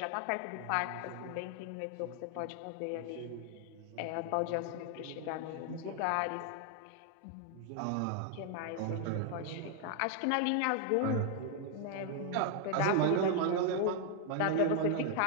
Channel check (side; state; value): both; different; correlation 0.00